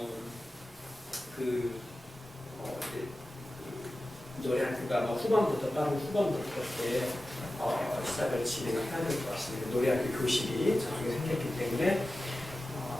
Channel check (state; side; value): normal; both; correlation 0.94